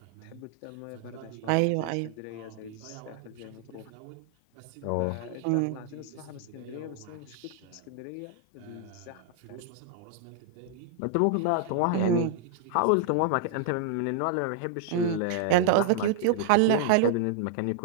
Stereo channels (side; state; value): both; different; correlation 0.00